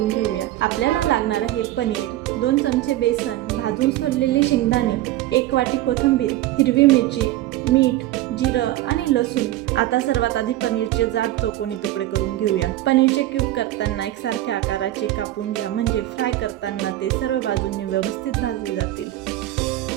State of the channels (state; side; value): quieter; left; 15.2 dB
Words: घेऊया। आपल्याला लागणार आहे पनीर, 2 चमचे बेसन, भाजून सोललेले शेंगदाणे, 1 वाटी कोथिंबीर, हिरवी मिरची, मीठ, जिरं आणि लसूण। आता सर्वात आधी पनीरचे जाड चौकोनी तुकडे करून घेऊया। पनीरचे क्यूब करताना एकसारख्या आकाराचे कापून घ्या, म्हणजे फ्राय करताना ते सर्व बाजूंनी व्यवस्थित भाजले जातील।